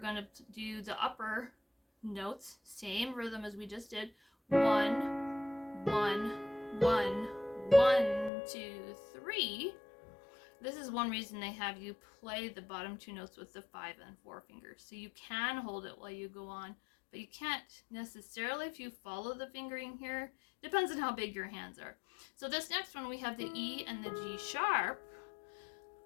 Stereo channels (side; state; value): right; drops out; at 8.3 s